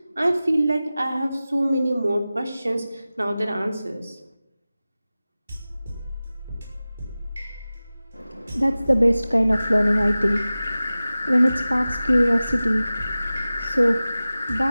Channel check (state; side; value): inverted; both; correlation -0.96